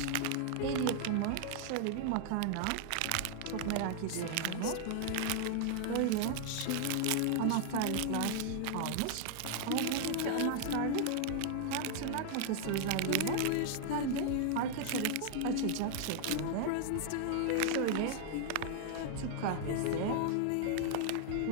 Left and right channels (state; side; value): different; both; correlation 0.00